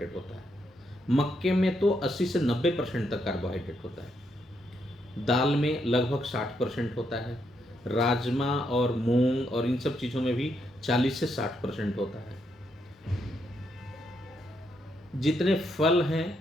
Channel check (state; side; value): normal; both; correlation 0.78